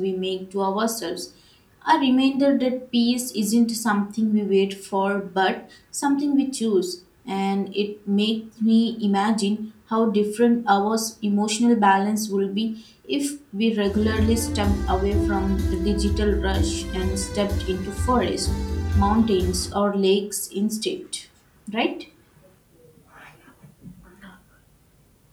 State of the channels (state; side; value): identical; both; correlation 1.00